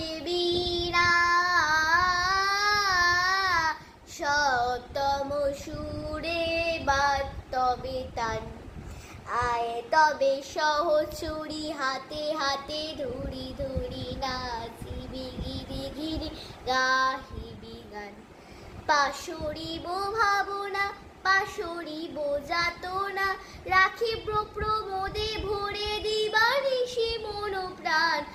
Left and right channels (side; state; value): both; identical; correlation 1.00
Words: বীণা সপ্তম সুরে বাদ তবে তান। আয় তবে সহচরি হাতে হাতে ধরি ধরি নাচিবি গিরি গিরি গাহিবি গান। পাশরিব ভাবনা পাশরিব যাতনা রাখিব প্রমোদে ভরে দিবানিশি মন প্রাণ।